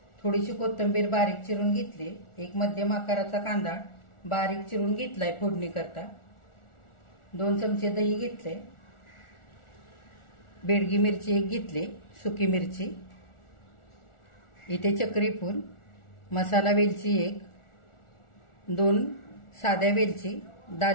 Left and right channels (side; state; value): right; late; 1.4 ms